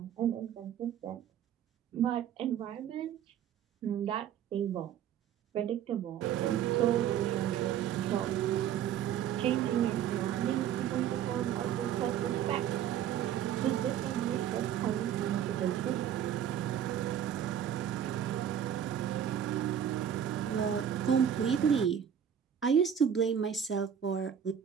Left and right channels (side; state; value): left; quieter; 9.4 dB